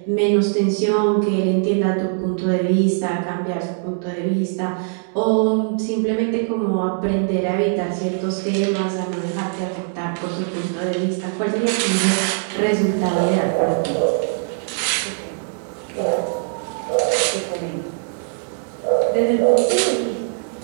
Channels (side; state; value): left; silent; digital silence